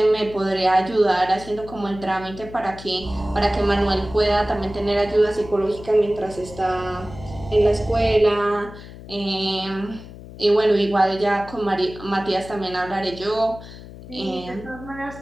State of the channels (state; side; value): noise; left; hum, 15 dB below the sound